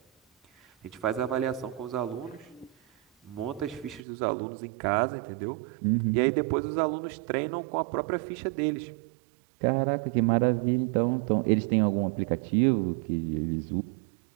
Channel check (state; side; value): drops out; left; at 4.0 s